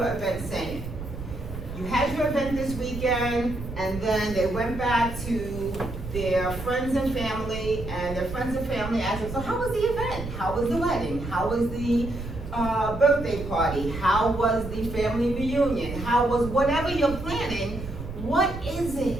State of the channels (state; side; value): noise; right; rumble, 9 dB below the sound